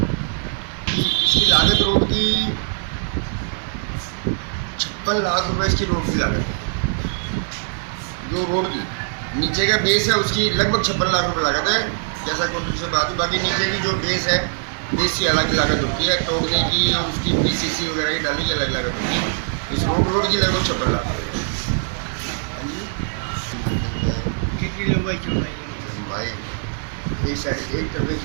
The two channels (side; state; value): left; silent; 63 dB below the other